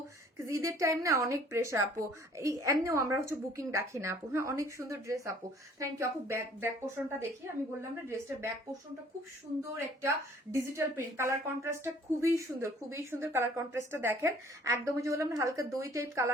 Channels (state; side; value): normal; both; correlation 0.55